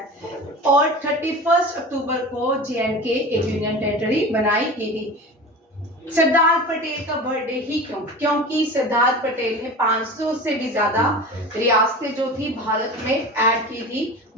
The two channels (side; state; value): both; normal; correlation 0.33